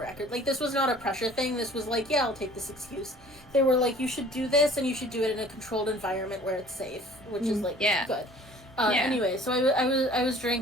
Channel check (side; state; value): both; normal; correlation 0.50